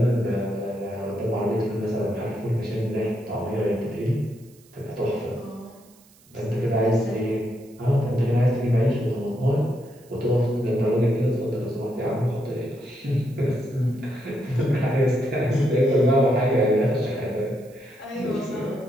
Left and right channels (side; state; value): right; noise; hiss, 28 dB below the sound